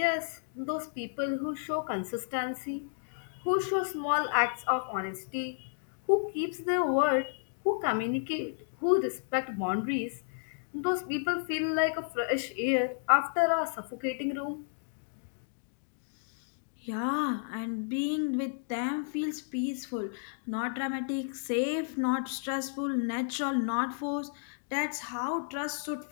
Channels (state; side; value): silent; right; digital silence